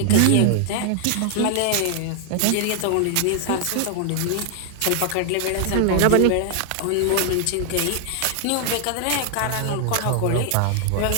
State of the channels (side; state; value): both; different; correlation -0.01